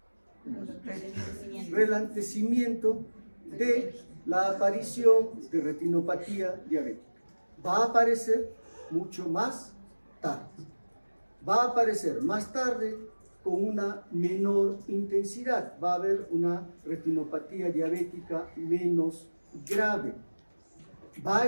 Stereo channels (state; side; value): inverted; both; correlation -1.00